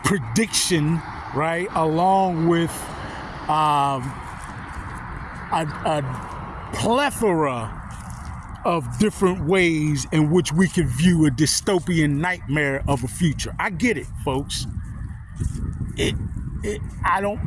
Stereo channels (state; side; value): identical; both; correlation 1.00